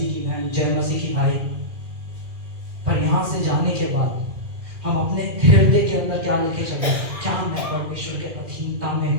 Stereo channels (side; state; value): left; late; 2.1 ms